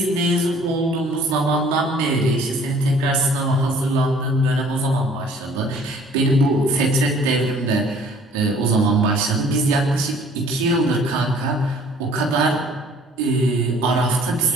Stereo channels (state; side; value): normal; both; correlation 0.55